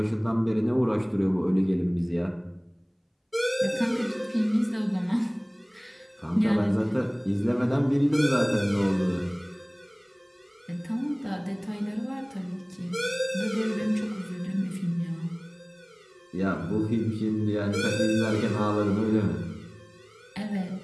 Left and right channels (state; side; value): identical; both; correlation 1.00